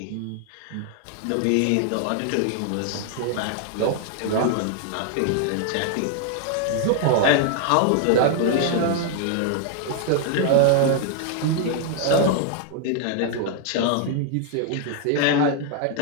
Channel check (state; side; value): different; both; correlation 0.00